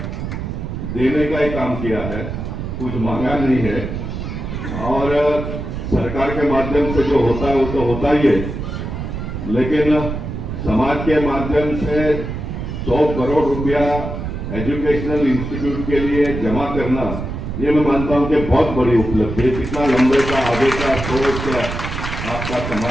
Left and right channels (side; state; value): right; noise; rumble, 6 dB below the sound